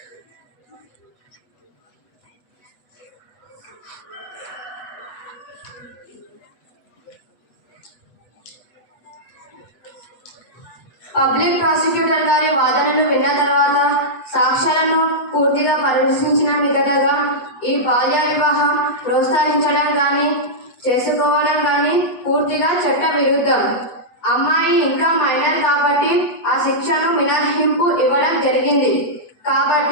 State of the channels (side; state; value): right; late; 8.1 ms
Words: పబ్లిక్ ప్రాసిక్యూటర్ గారి వాదనలు విన్న తర్వాత సాక్ష్యాలను పూర్తిగా పరిశీలించిన మీదటగా ఈ బాల్య వివాహం ప్రోత్సహించడం కానీ చేసుకోవడం కానీ పూర్తిగా చట్ట విరుద్ధం. అమ్మాయి ఇంకా మైనర్ కాబట్టి ఆ శిక్షను మినహాయింపు ఇవ్వడం జరిగింది.